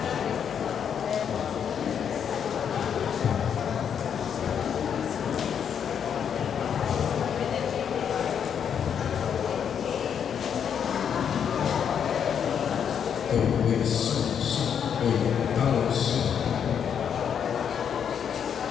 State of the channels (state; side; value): quieter; right; 8.0 dB